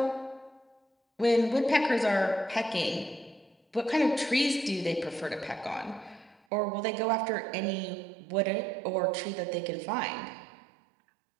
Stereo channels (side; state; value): left; drops out; at 6.4 s